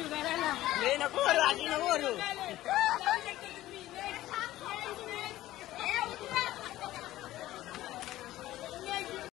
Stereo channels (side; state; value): right; quieter; 15.3 dB